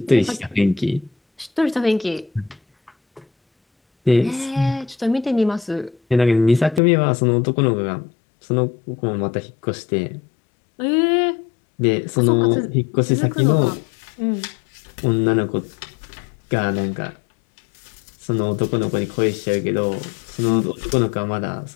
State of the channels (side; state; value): right; drops out; at 6.8 s